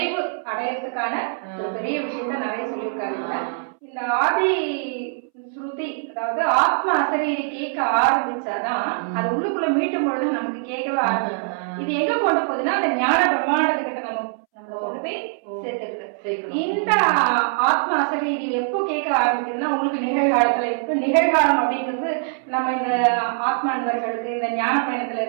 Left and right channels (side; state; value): left; silent; 64 dB below the other